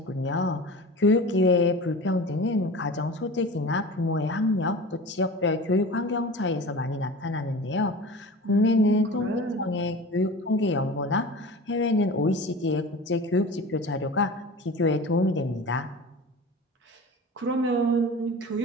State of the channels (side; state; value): both; normal; correlation 0.35